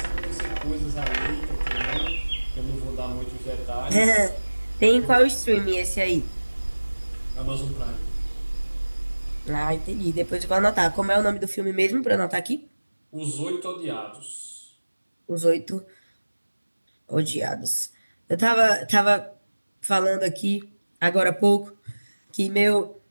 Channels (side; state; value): both; inverted; correlation -1.00